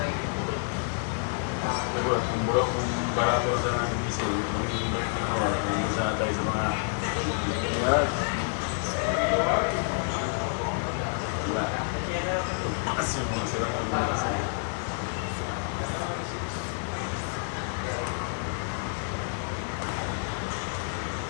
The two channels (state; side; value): silent; right; 59 dB below the other